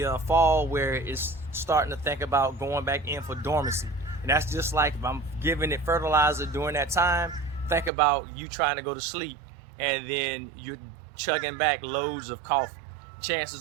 fall where it's starting to think about going back in for dormancy. And that's just like if I'm giving it fertilizer during that time, think about you trying to go to sleep and then you're chugging back loads of coffee.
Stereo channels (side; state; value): left; drops out; at 7.9 s